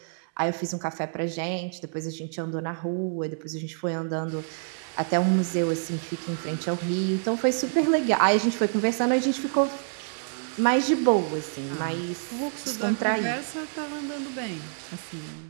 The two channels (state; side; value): silent; left; digital silence